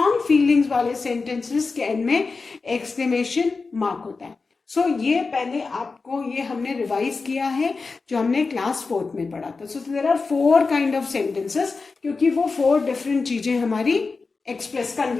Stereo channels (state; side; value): quieter; right; 4.3 dB